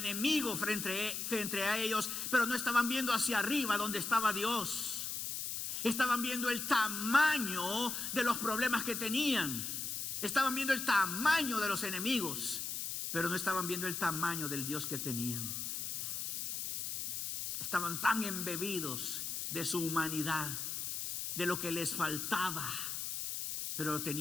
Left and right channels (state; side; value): noise; left; hiss, 3 dB below the sound